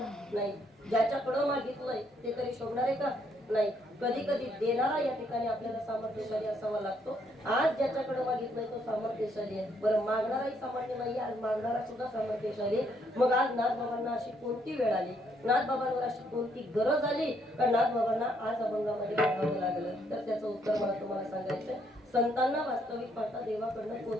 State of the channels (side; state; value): both; normal; correlation 0.71